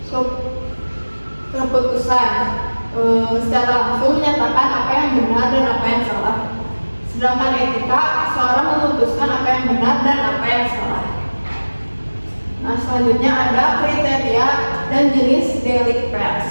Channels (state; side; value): inverted; both; correlation -1.00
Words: keputusan. Secara langsung menyatakan apa yang benar dan apa yang salah. Sedangkan etika, seorang memutuskan apa yang benar dan apa yang salah. Nah, selanjutnya ada kriteria dan jenis delik pers.